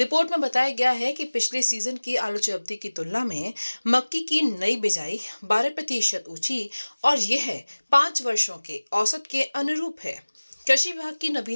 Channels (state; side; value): inverted; both; correlation -1.00